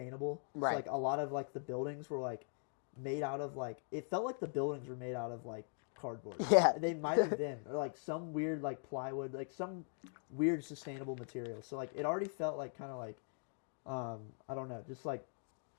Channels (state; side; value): silent; right; 50 dB below the other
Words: Right. So like a lot of like the buildings were like made out of like, it felt like the buildings were made out of like cardboard. Yeah, they might have been, or like some weird like plywood, like some weird sustainable material. So like it already felt like kind of like I don't know, just like